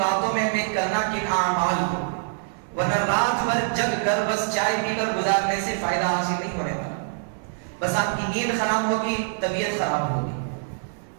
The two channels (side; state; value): left; silent; digital silence